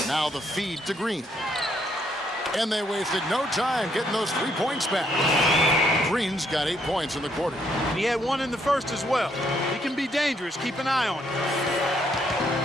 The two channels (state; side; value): normal; both; correlation 0.72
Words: Now the feed to Green. And they wasted no time getting those 3 points back. Green's got 8 points in the quarter. And he had 1 in the first as well. He can be dangerous. Keep an eye on him.